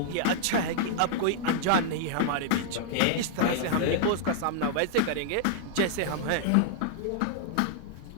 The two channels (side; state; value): both; different; correlation -0.01